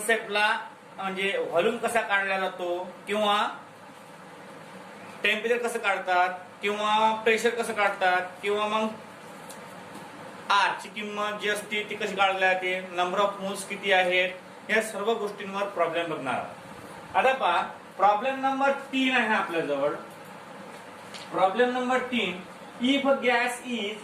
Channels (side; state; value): both; identical; correlation 1.00